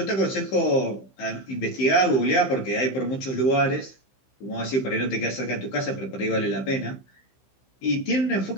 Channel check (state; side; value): late; right; 15 ms